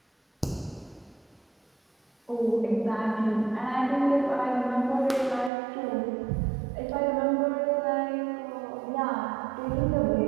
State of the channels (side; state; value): left; drops out; at 5.5 s